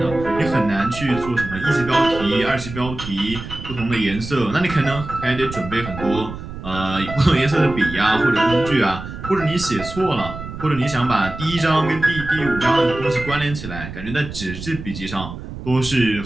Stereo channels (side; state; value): right; noise; rumble, 10 dB below the sound